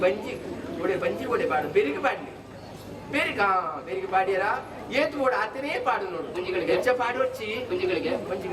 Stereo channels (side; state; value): both; identical; correlation 1.00